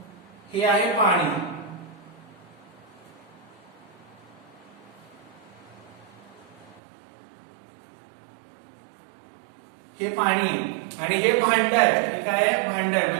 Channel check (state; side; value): drops out; left; at 6.8 s